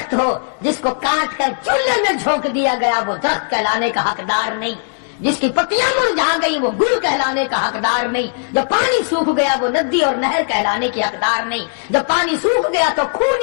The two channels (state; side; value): silent; right; digital silence